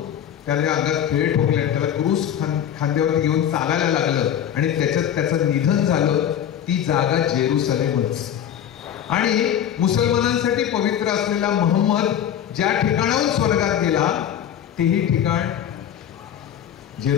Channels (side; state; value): right; quieter; 9.8 dB